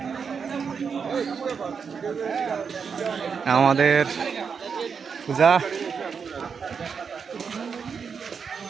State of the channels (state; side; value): quieter; left; 6.1 dB